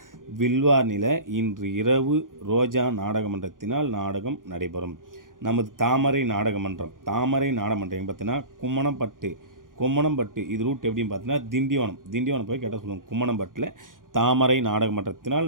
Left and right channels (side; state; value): left; late; 0.90 ms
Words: வில்வார்னியில் இன்று இரவு ரோஜா நாடகமன்றத்தினால் நாடகம் நடைபெறும். நமது தாமரை நாடகமன்றம் எங்கே பார்த்தீங்கன்னா கும்மணம்பட்டு இது ரூட் எப்படின்னு பார்த்தீங்கன்னா திண்டிவனம் போய் கேட்டால் சொல்லுவோம். கும்மணம்பட்டில் தாமரை நாடகமன்றத்தினால்